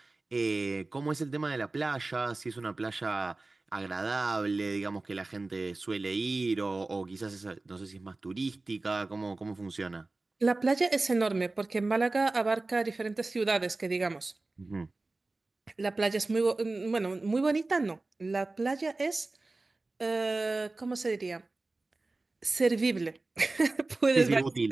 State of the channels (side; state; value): left; quieter; 3.2 dB